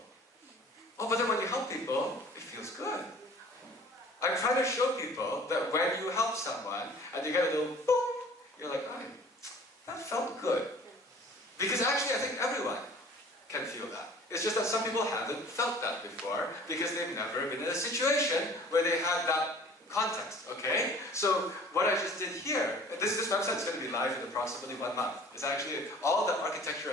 Oh, but then when you help people, it feels good. I'm trying to show people that when you help someone and you get a little boop, you're like, oh, that felt good. Because actually, I think everyone can feel that. It's just that some people haven't felt that before because they've never been in a situation where they had that context, okay? So what I just did here, this website is going to be live in approximately 1 month. It's actually, all the architecture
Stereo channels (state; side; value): normal; both; correlation 0.49